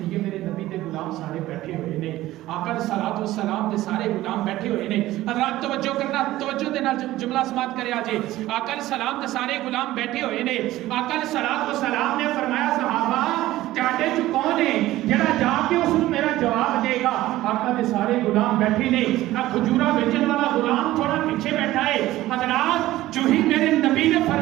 میرے نبی دے غلام سارے بیٹھے ہوئے نے، آقا علیہ الصلوۃ والسلام دے سارے غلام بیٹھے ہوئے نے۔ حضرات توجہ کرنا، توجہ دے نال جملہ سماعت کرے آجے، آقا علیہ السلام دے سارے غلام بیٹھے ہوئے نے۔ آقا علیہ الصلوۃ والسلام نے فرمایا صحابہ تہاڈے چ کون ہے جڑا جا کے اس نوں میرا جواب دے گا؟ آقا دے سارے غلام بیٹھے نے، کھجورا بیچن والا غلام تھوڑا پیچھے بیٹھا ہے۔ حضرات جو ہی میرے نبی نے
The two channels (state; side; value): quieter; left; 15.9 dB